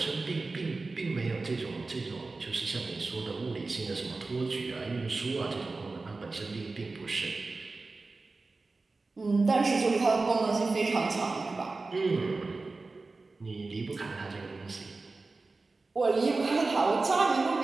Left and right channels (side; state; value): left; quieter; 3.7 dB